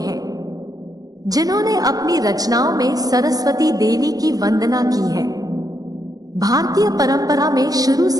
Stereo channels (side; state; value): left; late; 0.18 ms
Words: जिन्होंने अपनी रचनाओं में सरस्वती देवी की वंदना की है। भारतीय परंपरा में शुरू